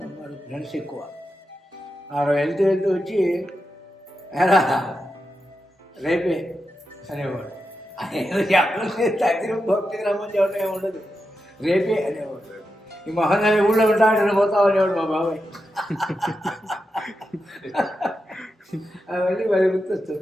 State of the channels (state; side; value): normal; both; correlation 0.88